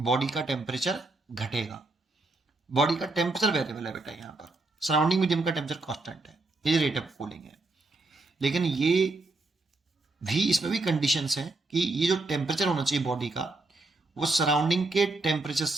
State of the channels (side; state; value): left; quieter; 3.1 dB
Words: का टेम्परेचर घटेगा। बॉडी का टेम्परेचर वेरिएबल है बेटा, यहाँ पर सराउंडिंग मीडियम का टेम्परेचर कांस्टेंट है, ये रेट ऑफ कूलिंग है। लेकिन ये भी इसमें भी कंडीशंस हैं कि ये जो टेम्परेचर होना चाहिए बॉडी का वो सराउंडिंग के टेम्परेचर